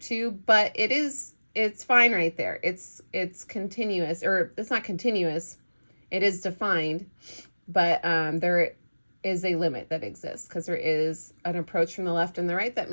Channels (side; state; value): both; inverted; correlation -1.00